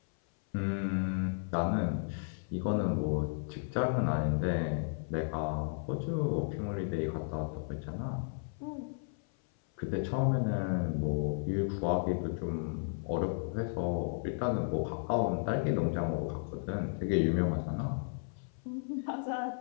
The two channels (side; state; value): right; silent; 55 dB below the other